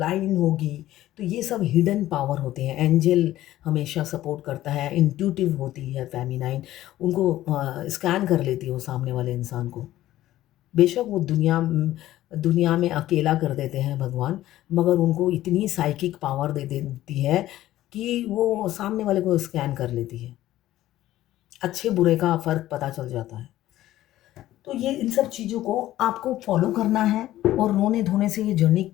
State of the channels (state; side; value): quieter; right; 14.5 dB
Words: होगी, तो ये सब हिडन पावर होते हैं। एंजल हमेशा सपोर्ट करता है, इंट्यूटिव होती है फ़ेमिनाइन, उनको स्कैन कर लेती है वो सामने वाले इंसान को। बेशक वो दुनिया में अकेला कर देते हैं भगवान, मगर उनको इतनी साइकिक पावर दे देती है कि वो सामने वाले को स्कैन कर लेती है। अच्छे-बुरे का फ़र्क पता चल जाता है। तो ये इन सब चीज़ों को आपको फ़ॉलो करना है, और रोने-धोने से ये जर्नी